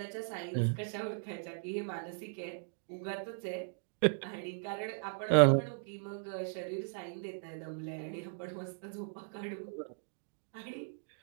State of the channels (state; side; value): silent; left; digital silence